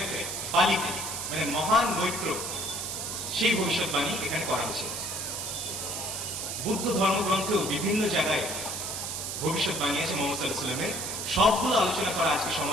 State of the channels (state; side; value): noise; right; hiss, 4 dB below the sound